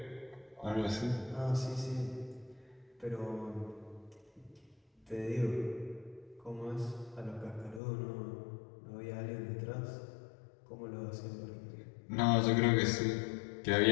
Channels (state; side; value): drops out; right; at 7.8 s